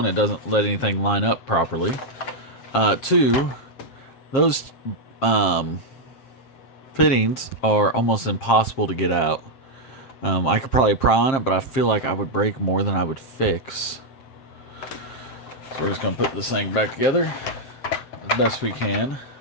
it doesn't let anything line up properly. Two, those fittings are almost impossible to get out. I could probably pry on it, but I feel like I would break more than I would fix. So we're just going to put this thing back together as best we can.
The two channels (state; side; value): late; right; 7.5 ms